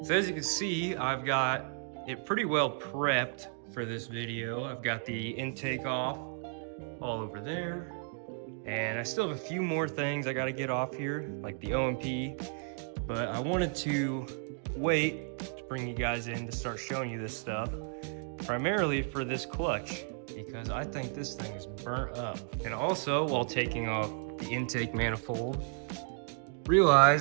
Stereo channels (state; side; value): silent; left; 56 dB below the other